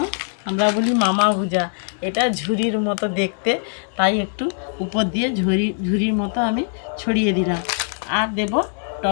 আমরা বলি মামা ভুজা, এটা ঝুরির মতো দেখতে, তাই একটু উপর দিয়ে ঝুরির মতো আমি ছড়িয়ে দিলাম। আর দেব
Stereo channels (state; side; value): silent; right; digital silence